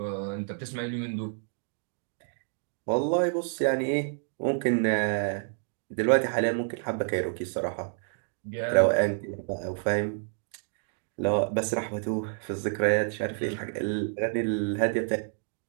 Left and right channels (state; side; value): silent; left; digital silence